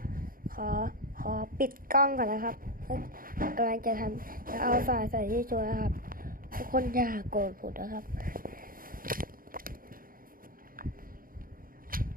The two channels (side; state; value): left; late; 0.41 ms